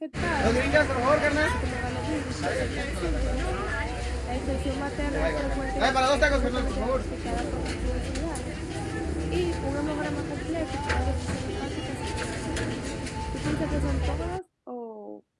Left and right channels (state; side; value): identical; both; correlation 1.00